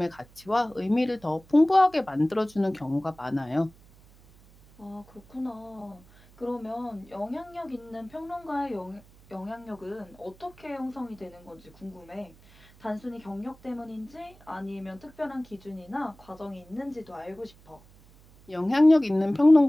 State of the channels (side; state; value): right; noise; hum, 25 dB below the sound